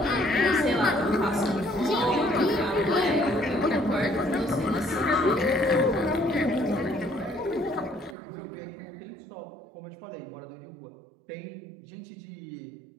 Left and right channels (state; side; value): drops out; left; at 8.2 s